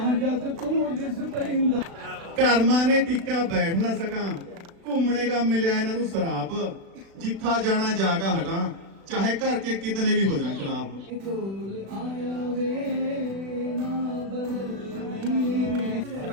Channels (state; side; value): late; left; 36 ms